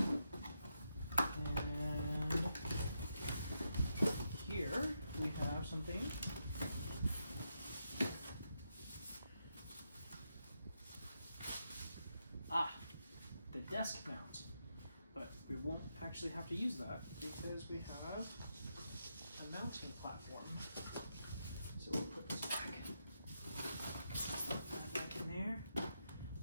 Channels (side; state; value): both; inverted; correlation -0.83